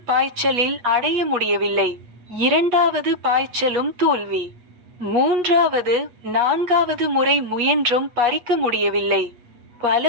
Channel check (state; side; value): late; left; 8.3 ms